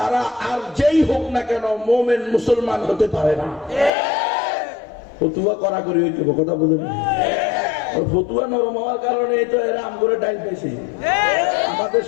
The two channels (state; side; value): drops out; right; at 3.9 s